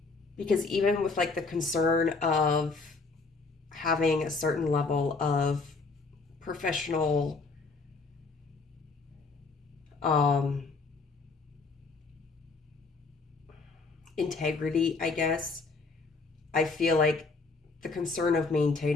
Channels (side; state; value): right; quieter; 4.0 dB